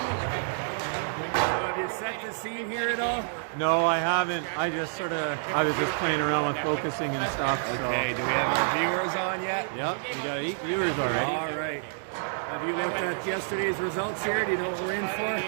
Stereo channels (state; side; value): silent; left; digital silence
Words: So have you set the scene here at all? No, I haven't. I just sort of... I was just playing around with focusing and stuff, Okay, do we have our viewers on yet? Yep, we got 8 viewers already. All right. Have you looked at yesterday's results here? Do you know what we're in for?